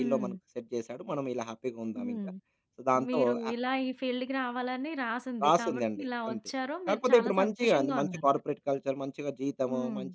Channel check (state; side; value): identical; both; correlation 1.00